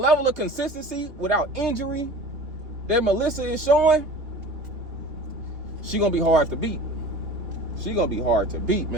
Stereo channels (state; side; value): late; left; 3.2 ms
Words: of consistency without injury that Melissa is showing, she gonna be hard to beat. She gonna be hard to beat,